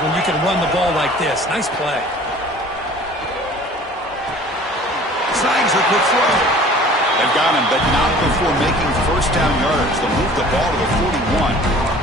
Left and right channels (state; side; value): normal; both; correlation 0.47